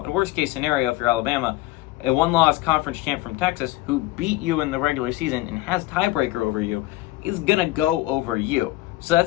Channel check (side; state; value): right; quieter; 17.6 dB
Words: worst case scenario, if you're Alabama, a one-loss conference champ from Texas who beat you in the regular season and has tiebreaker over you is going to go over you. So